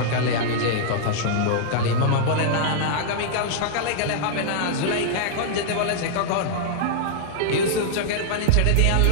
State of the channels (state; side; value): different; both; correlation -0.01